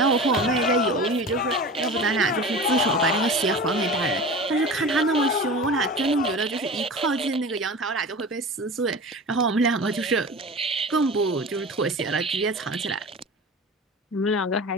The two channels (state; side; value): normal; both; correlation 0.34